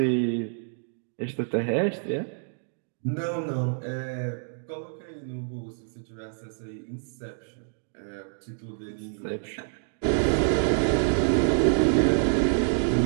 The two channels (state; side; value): silent; left; digital silence